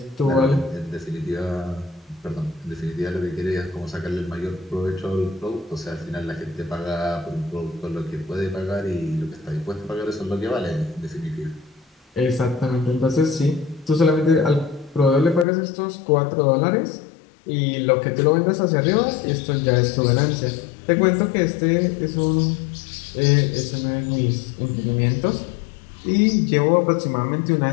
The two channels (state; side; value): drops out; right; at 15.5 s